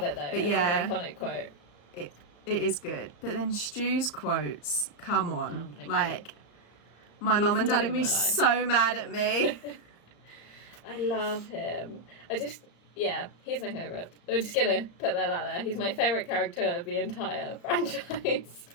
it though. It's an iconic quote. It is good. But then Stu's quotes, come on. My mum and dad are going to be so mad at me. I love him. Yeah, he's my favourite. We're just gonna put that out there. He's my favourite character of the entire franchise.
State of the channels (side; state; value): right; late; 35 ms